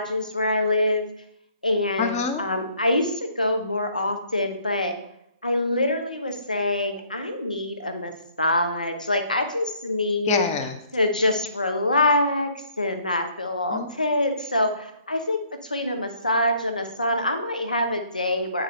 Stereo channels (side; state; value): both; inverted; correlation -0.62